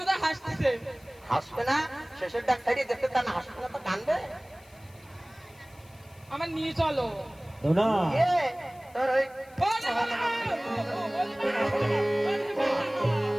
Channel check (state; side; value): noise; left; hiss, 27 dB below the sound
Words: হাসতেছে। হাসবে না? শেষের ডাক ছাড়িয়ে দেখতে তা না হাসবে না তো কানবে? আমার নিয়ে চলো। ধনা তোর ওই